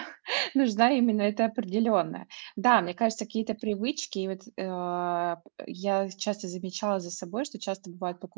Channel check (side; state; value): left; silent; digital silence